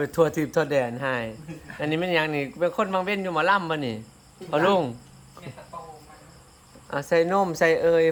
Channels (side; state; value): both; identical; correlation 1.00